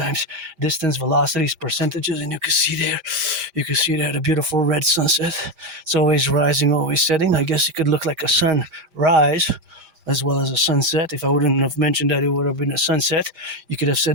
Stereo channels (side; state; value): left; late; 5.0 ms